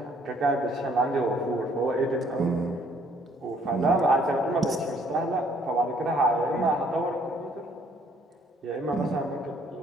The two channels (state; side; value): normal; both; correlation 0.63